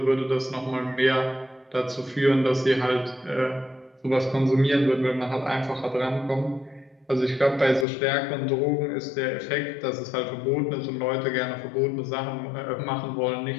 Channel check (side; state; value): right; drops out; at 7.9 s